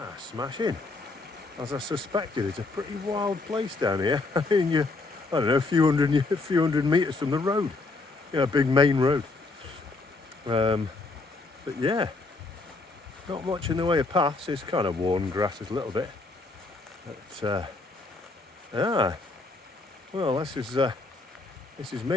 Smashing. As I suspected, it's a pretty wild place down here. I mean, I don't know, a few hundred metres from the road. A big main road. But yeah, not much in the way of paths. It's kind of worn grasses a little bit. But well, this is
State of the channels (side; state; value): right; quieter; 3.5 dB